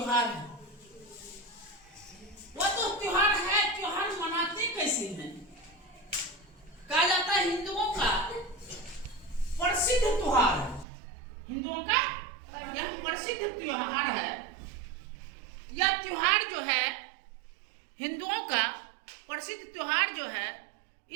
है। वो तो त्योहार है, त्योहार मनाते कैसे हैं? कहा जाता है हिंदुओं का प्रसिद्ध त्योहार है। हिंदुओं का यह प्रसिद्ध त्योहार है। यह त्योहार जो है हिंदुओं का प्रसिद्ध त्योहार जो है,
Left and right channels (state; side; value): drops out; left; at 10.9 s